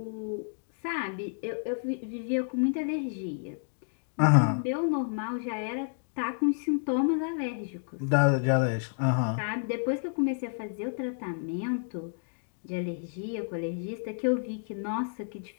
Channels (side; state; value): right; silent; digital silence